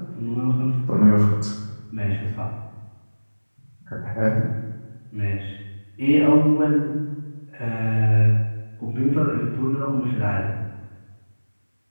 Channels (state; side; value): inverted; both; correlation -1.00